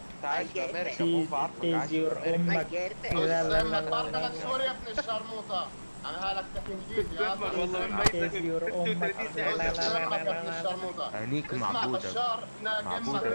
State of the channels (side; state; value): both; inverted; correlation -1.00